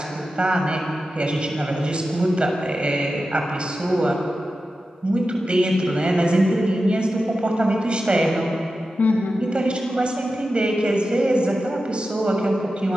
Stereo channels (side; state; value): both; normal; correlation 0.92